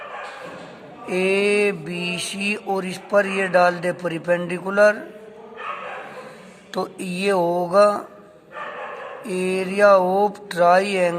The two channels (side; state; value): both; identical; correlation 1.00